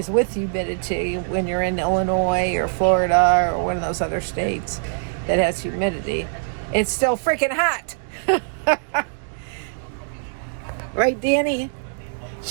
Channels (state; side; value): silent; left; digital silence